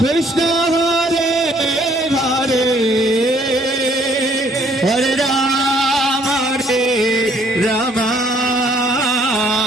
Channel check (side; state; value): both; normal; correlation 0.63